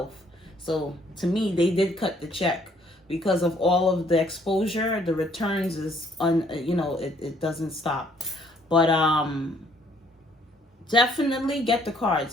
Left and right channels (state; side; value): normal; both; correlation 0.64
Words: So to me, they did cut the check. Because of all of the exposure, the returns is it doesn't stop. But definitely get the